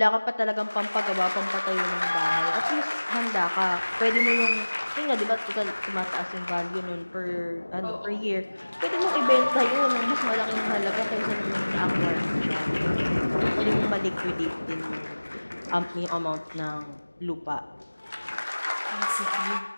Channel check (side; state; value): both; inverted; correlation -1.00